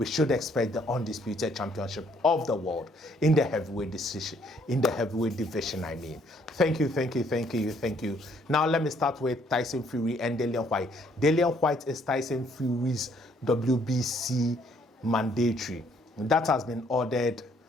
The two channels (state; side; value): normal; both; correlation 0.66